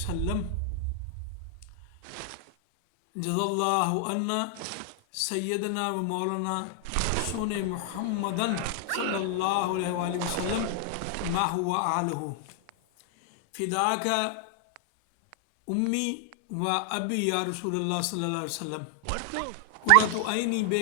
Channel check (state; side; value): different; both; correlation 0.00